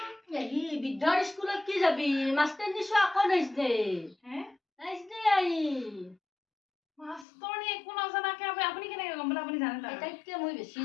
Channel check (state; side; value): drops out; right; at 7.2 s